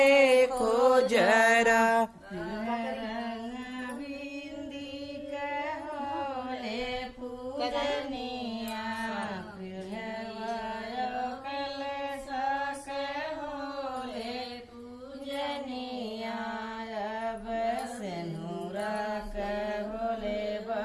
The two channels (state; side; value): identical; both; correlation 1.00